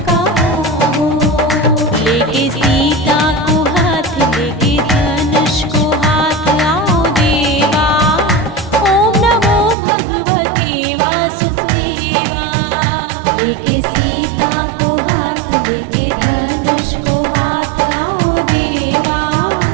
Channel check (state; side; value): drops out; left; at 9.8 s